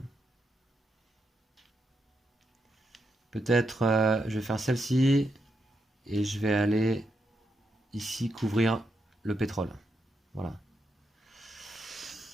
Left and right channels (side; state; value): both; normal; correlation 0.83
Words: Peut-être je vais faire celle-ci et je vais aller ici couvrir le pétrole. Voilà.